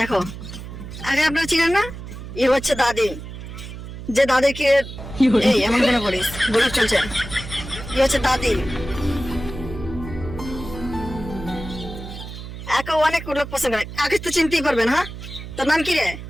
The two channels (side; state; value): right; noise; hum, 11 dB below the sound